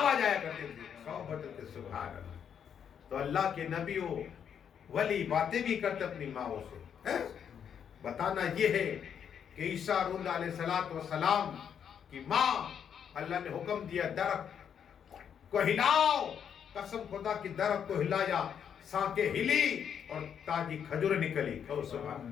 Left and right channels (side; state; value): right; quieter; 8.1 dB